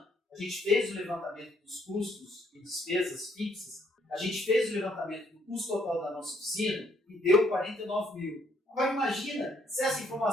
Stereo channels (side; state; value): both; normal; correlation 0.68